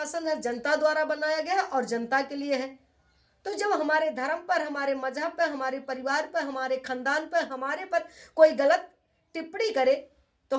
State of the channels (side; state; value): both; identical; correlation 1.00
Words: है, जनता द्वारा बनाया गया है और जनता के लिए है। तो जब हमारे धर्म पर, हमारे मजहब पर, हमारे परिवार पर, हमारे खानदान पर, हमारे पर कोई गलत टिप्पणी करे तो